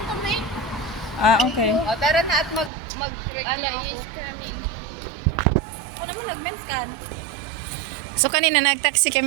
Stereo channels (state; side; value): drops out; left; at 2.7 s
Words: to me. Ah, okay. O, tara na at Ala is coming. Ako naman nag-men's can. So kanina nag-taxi